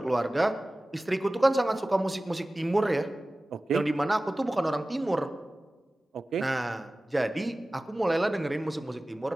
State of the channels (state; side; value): normal; both; correlation 0.97